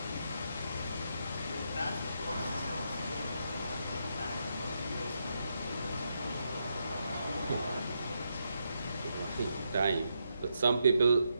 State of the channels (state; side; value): inverted; both; correlation -0.81